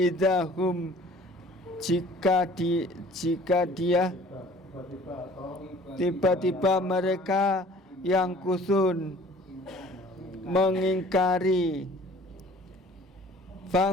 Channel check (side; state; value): both; normal; correlation 0.50